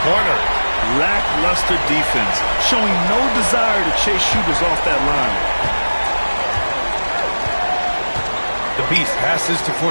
Lackluster defense, showing no desire to chase shooters off that line. The Beast passes to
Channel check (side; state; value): both; inverted; correlation -1.00